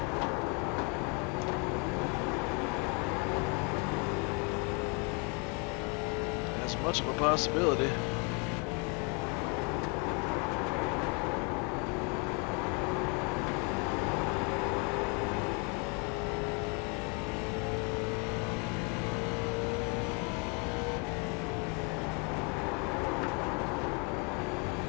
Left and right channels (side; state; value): right; quieter; 33.8 dB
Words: as much of a possibility.